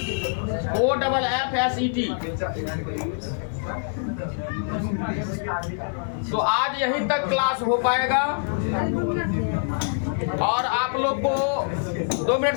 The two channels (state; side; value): silent; right; 56 dB below the other